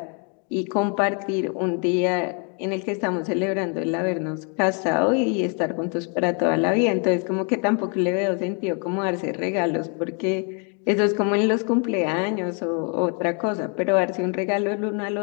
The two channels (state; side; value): quieter; right; 38.1 dB